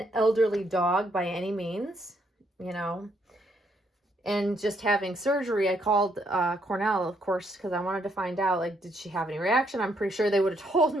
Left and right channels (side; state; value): both; normal; correlation 0.73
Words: elderly dog by any means, you know. And just having surgery, I called Cornell, of course, because I wanted to find out, like, did she have any reaction? I'm pretty sure they would have told